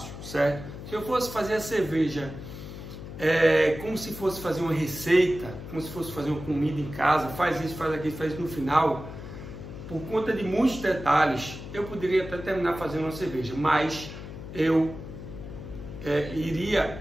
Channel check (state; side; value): noise; left; hum, 11 dB below the sound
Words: certo? Se eu fosse fazer a cerveja como se fosse fazer uma receita, como se fosse fazer uma comida em casa, faz isso, faz aquilo, faz isso no final, por conta de muitos detalhes, eu poderia até terminar fazendo uma cerveja, mas eu iria